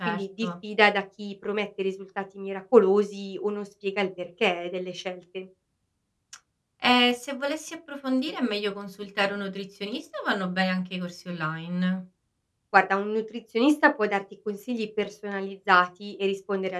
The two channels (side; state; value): both; identical; correlation 1.00